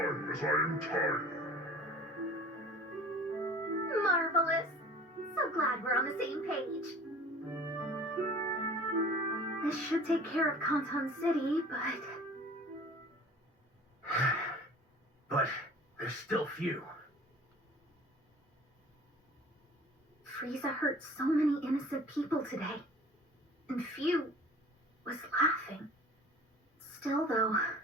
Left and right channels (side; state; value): both; normal; correlation 0.45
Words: as I am tired. Marvelous. So glad we're on the same page. This should take care of Canton City, but... But there's still few. Frieza hurt so many innocent people today, and few was laughing. Still, though,